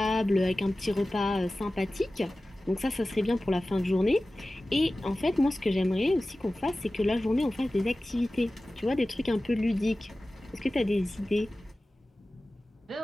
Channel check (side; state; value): both; normal; correlation 0.96